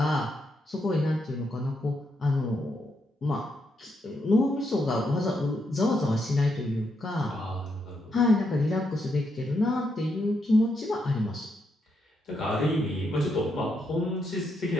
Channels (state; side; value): normal; both; correlation 0.80